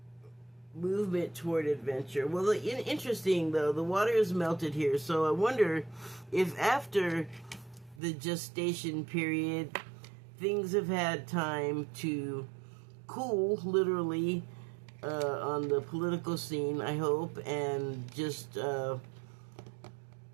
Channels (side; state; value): left; drops out; at 8.0 s